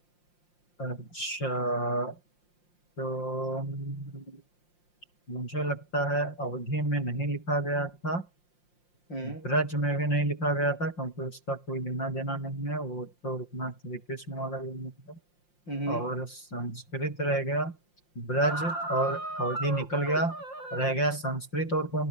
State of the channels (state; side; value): late; right; 5.7 ms